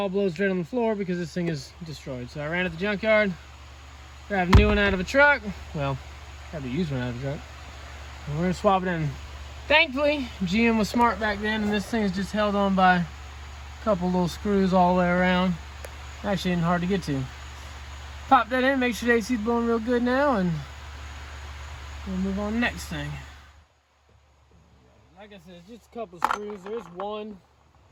blows straight on the floor because this thing is destroyed. So I ran at the junkyard, grabbed a new one out of a truck. Well, grabbed a used one out of a truck. And we're gonna swap it in. Thankfully, GM was smart back then, and this thing is just held on by a couple little screws all the way around. Actually isn't hard to get to. Pop that in, make sure the AC is blowing real good now, and we'll move on to the next thing. Like I said, it's just a couple of screws. There's one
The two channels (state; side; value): identical; both; correlation 1.00